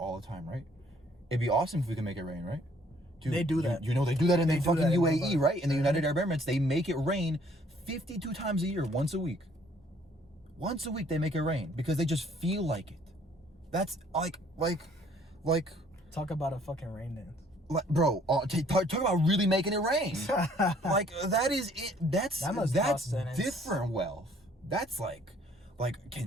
the time, right? It'd be awesome if we could make it rain, right? Dude, they do that. They do that in the fucking UAE, right? In the United Arab Emirates, they make it rain 52 times a year, once a week. Once a week they make it rain because they just feel like it. That's like talk about a fucking rain dance. Like, bro, talk about really making it rain. Like, that is it. That's different wealth. That's like,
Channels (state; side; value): normal; both; correlation 0.61